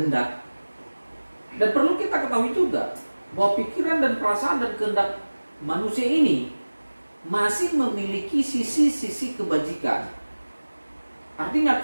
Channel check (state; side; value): inverted; both; correlation -1.00